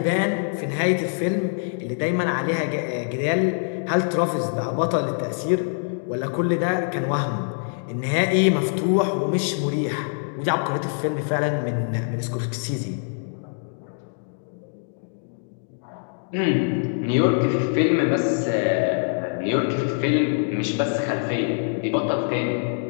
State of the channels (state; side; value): silent; right; digital silence